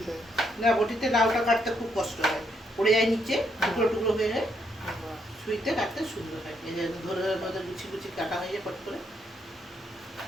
না, বটিতে লাউটা কাটতে খুব কষ্ট হয়, পড়ে যায় নিচে, টুকরো টুকরো হয়ে যায়। ছুরিতে কাটতে সুন্দর হয়, এই যে ধরে ধরে গুছি গুছি কাটা হয়ে যায় পট করে।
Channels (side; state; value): both; normal; correlation 0.76